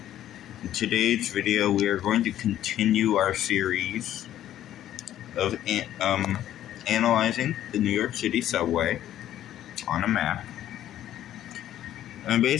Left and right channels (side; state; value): right; quieter; 12.1 dB